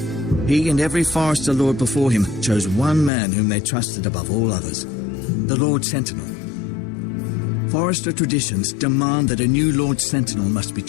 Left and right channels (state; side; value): drops out; right; at 3.1 s